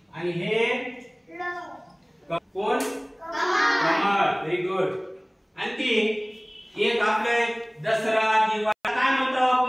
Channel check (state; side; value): identical; both; correlation 1.00